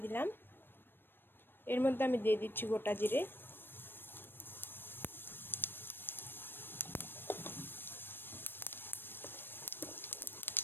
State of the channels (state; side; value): late; right; 0.097 ms